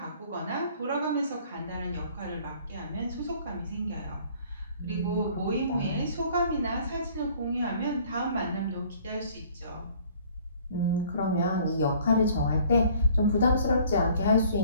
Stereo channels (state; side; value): inverted; both; correlation -0.55